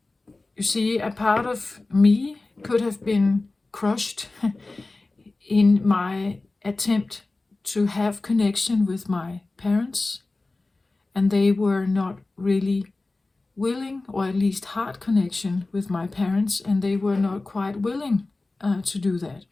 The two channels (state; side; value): quieter; right; 3.2 dB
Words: you see, a part of me could have been crushed in my attempt to have connection with my parents, and they were not really willing, or at least heart connection with my parents, and they were not quite willing to do that.